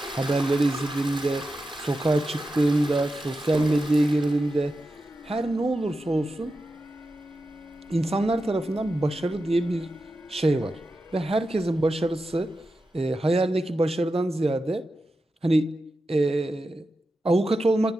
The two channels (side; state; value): both; normal; correlation 0.91